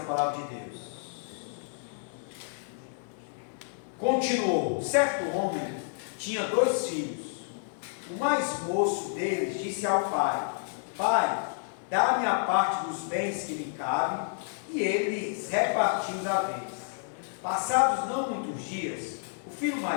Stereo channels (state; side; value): silent; right; digital silence